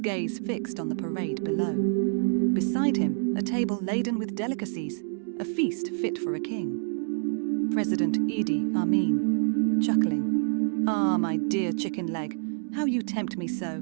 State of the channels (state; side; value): silent; left; digital silence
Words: fixed on the parade below. Beside him, a table laden with delicacies, a feast fit for a king. President Idi Amin, chuckling. "Ah, my dear chicken leg, how you tempt me so.